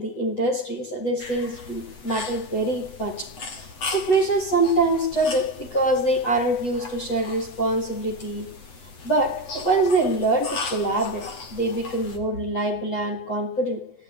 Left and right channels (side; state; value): right; late; 8.0 ms